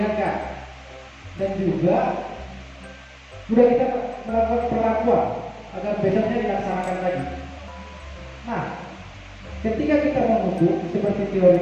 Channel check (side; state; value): both; identical; correlation 1.00